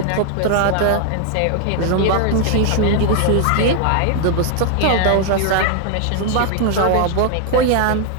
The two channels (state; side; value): different; both; correlation 0.00